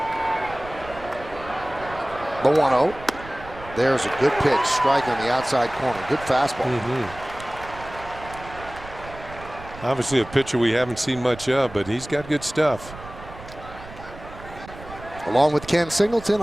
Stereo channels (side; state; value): right; noise; rumble, 16 dB below the sound